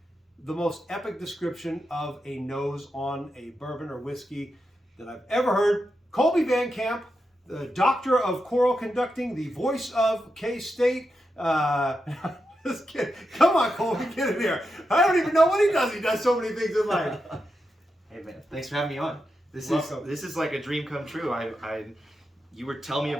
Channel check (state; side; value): normal; both; correlation 0.87